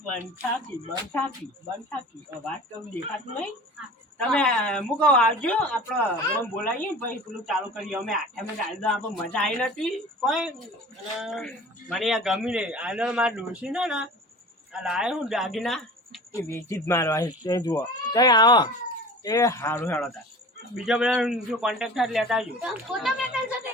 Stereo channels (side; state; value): both; normal; correlation 0.40